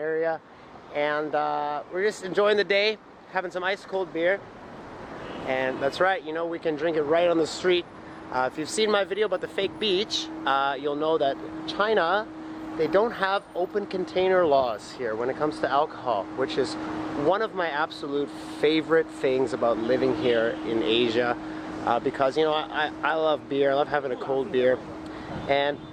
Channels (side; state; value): both; identical; correlation 1.00